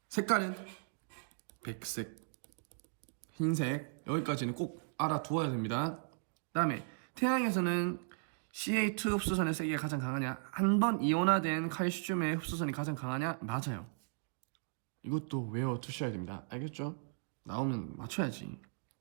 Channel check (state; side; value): silent; left; digital silence